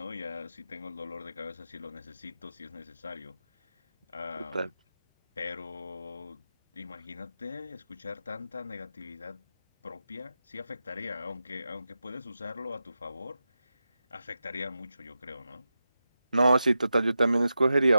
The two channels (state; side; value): inverted; both; correlation -0.90